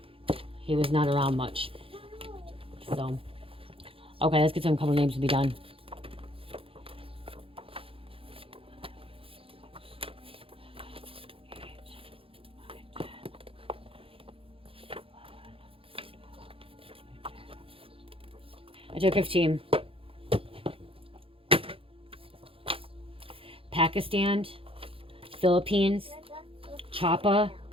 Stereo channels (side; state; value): left; late; 0.27 ms